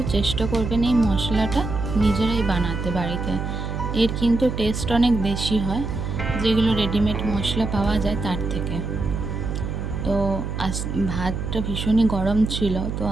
চেষ্টা করবেন এই মশলাটা নিজেরাই বানাতে বাড়িতে। এর কিন্তু টেস্ট অনেক বেশি হয় যেগুলো রেডিমেড মশলা পাওয়া যায় তার থেকে। তো ভাতটা ভীষণই গরম ছিল, তো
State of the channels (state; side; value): noise; right; hum, 4 dB below the sound